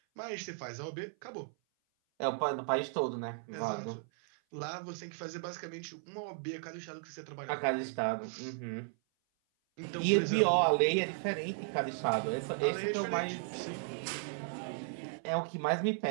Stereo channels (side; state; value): left; silent; 54 dB below the other